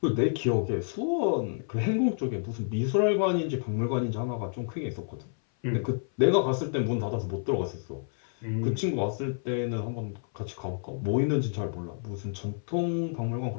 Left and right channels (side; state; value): right; silent; 57 dB below the other